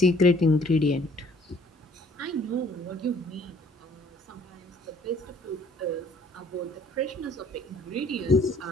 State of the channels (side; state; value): both; normal; correlation 0.58